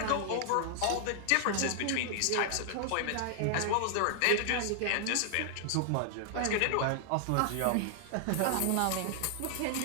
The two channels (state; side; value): different; both; correlation -0.01